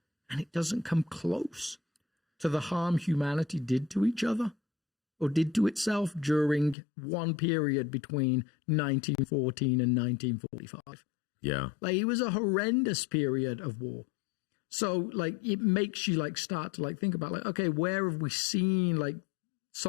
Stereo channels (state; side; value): drops out; right; at 6.8 s